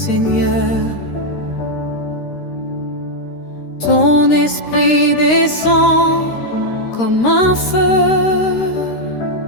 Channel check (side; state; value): right; late; 13 ms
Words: Ton esprit descend comme un feu.